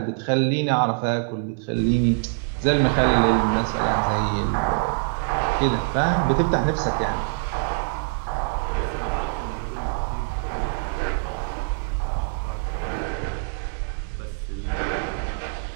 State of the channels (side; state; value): left; silent; 62 dB below the other